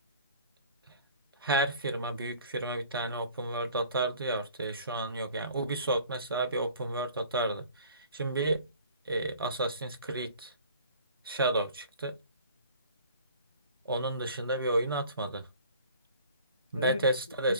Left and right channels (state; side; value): inverted; both; correlation -0.49